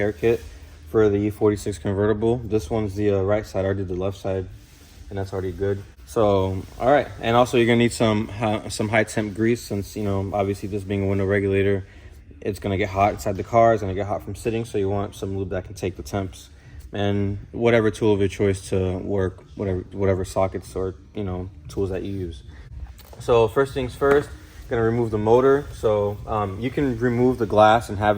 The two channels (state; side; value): identical; both; correlation 1.00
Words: kit for the E46 Convertible. This one's the right side. I did the left side, and that's already good. So, all right. And also, you're gonna need some high temp grease, since, you know, obviously this being a window regulator, it's gonna get hot inside the car. It's gonna get hot from sitting, so you want some lube that can take the temps. And whatever tool of your choice to work, whatever sockets or, you know, tools that you use. So first things first, gonna remove the motor. So you can remove the glass and